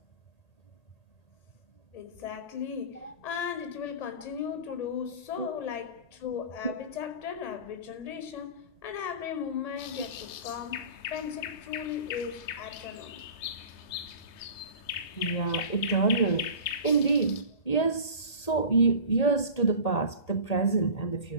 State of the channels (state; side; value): late; right; 1.8 ms